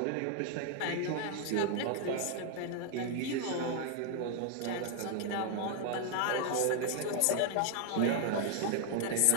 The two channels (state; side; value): different; both; correlation 0.00